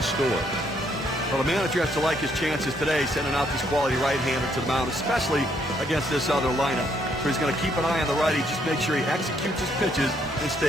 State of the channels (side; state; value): both; normal; correlation 0.71